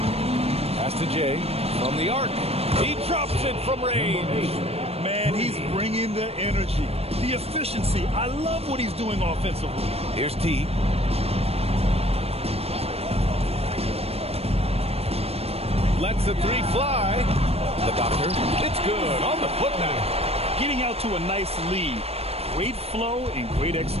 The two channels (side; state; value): left; late; 0.29 ms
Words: Pass to Jay from the arc. He drops it from range. Man, he's bringing the energy, the efficiency. I love what he's doing offensively. Here's T. Lets the 3 fly. The doctor. It's good on the putback. Getting out to a nice lead. Great flow and great